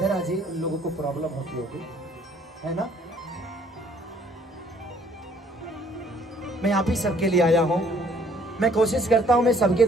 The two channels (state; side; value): normal; both; correlation 0.61